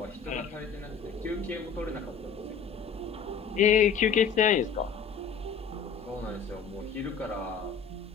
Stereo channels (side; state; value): right; quieter; 6.4 dB